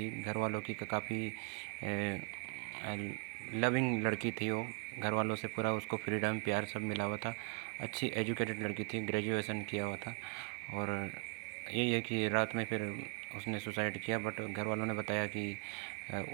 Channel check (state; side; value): quieter; left; 35.0 dB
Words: घर वालों की काफ़ी लविंग लड़की थी वो। घर वालों से पूरा उसको फ्रीडम प्यार सब मिला हुआ था। अच्छी एजुकेटेड लड़की थी, ग्रेजुएशन किया हुआ था। और यही है कि रात में फिर उसने सुसाइड किया। बट घर वालों ने बताया कि